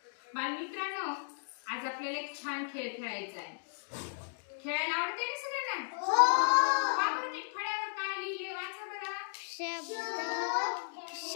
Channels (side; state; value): right; silent; digital silence